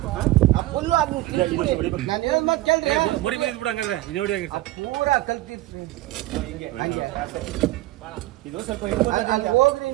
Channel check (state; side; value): quieter; left; 17.2 dB